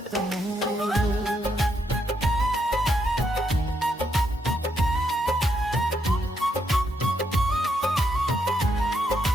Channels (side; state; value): both; normal; correlation 0.77